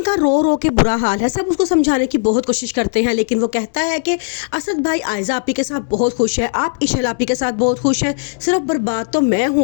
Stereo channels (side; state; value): right; silent; 68 dB below the other